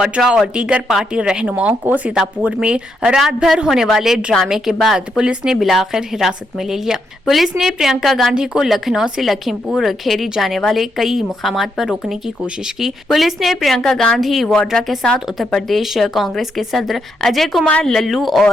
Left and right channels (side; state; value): both; normal; correlation 0.79